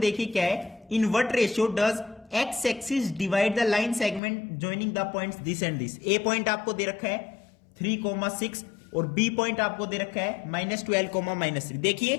क्या है। In what ratio does x axis divide the line segment joining the points this and this. A point आपको दे रखा है 3,6 और बी पॉइंट आपको दे रखा है -12,-3।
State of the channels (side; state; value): right; drops out; at 4.2 s